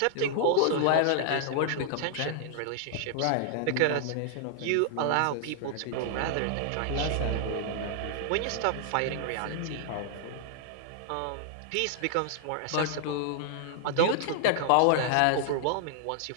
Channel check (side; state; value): both; different; correlation -0.01